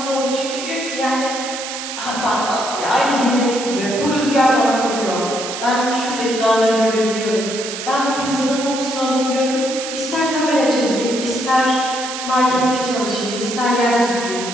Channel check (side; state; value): right; noise; hiss, 7 dB below the sound